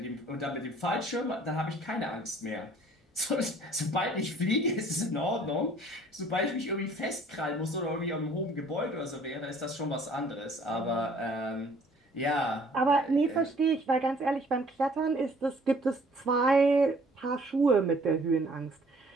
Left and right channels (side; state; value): both; normal; correlation 0.56